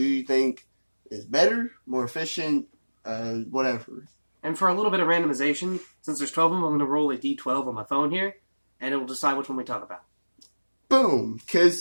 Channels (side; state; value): both; inverted; correlation -1.00